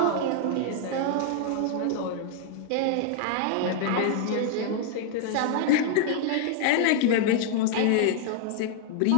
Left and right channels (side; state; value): both; different; correlation 0.00